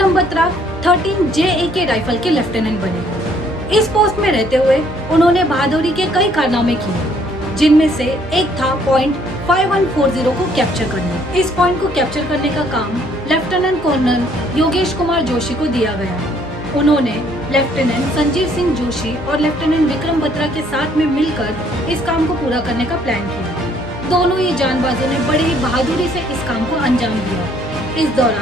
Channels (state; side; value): normal; both; correlation 0.64